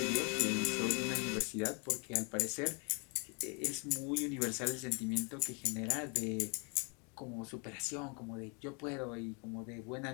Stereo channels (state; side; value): quieter; right; 34.1 dB